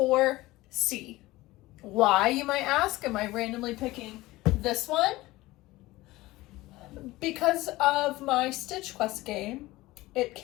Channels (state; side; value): quieter; right; 18.8 dB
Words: Why, you might ask? Am I randomly picking this one? Because of my Stitch Quest game, it